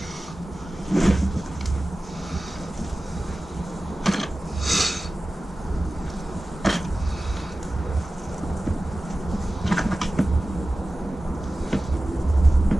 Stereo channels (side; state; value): both; normal; correlation 0.96